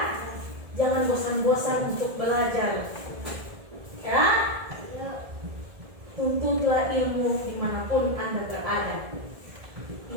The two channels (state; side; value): late; left; 1.7 ms